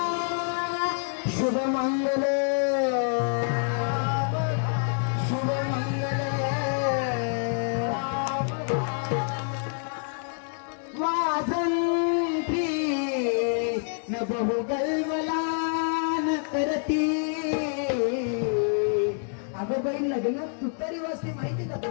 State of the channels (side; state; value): right; silent; 60 dB below the other